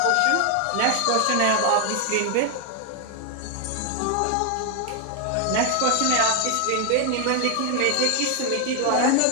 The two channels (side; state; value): both; different; correlation 0.01